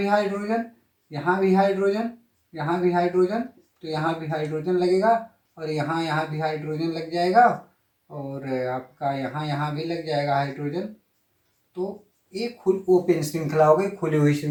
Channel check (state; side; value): identical; both; correlation 1.00